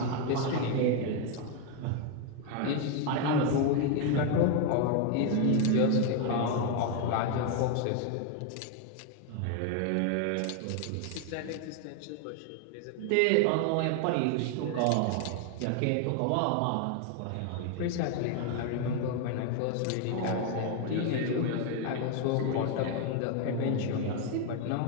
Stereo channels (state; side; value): different; both; correlation 0.01